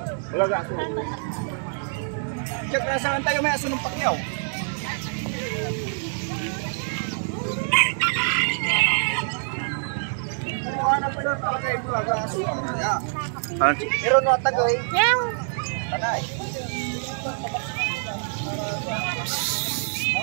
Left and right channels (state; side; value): silent; left; digital silence